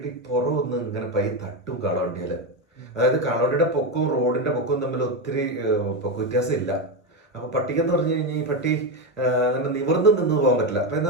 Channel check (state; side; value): normal; both; correlation 0.12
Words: പുറമൊന്ന് ഇങ്ങനെ തട്ടും കാളവണ്ടിയിൽ. അതായത് കാളവണ്ടിയുടെ പൊക്കവും റോഡിന്റെ പൊക്കവും തമ്മിൽ ഒത്തിരി പൊക്ക വ്യത്യാസം ഇല്ല. അപ്പൊ പട്ടിക്കെന്ന് പറഞ്ഞു കഴിഞ്ഞാൽ ഈ പട്ടി അങ്ങനെ നിവർന്ന് നിന്ന് പോകാൻ പറ്റില്ല. അപ്പൊ